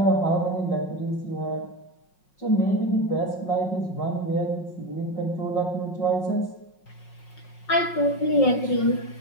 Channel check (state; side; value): late; right; 5.5 ms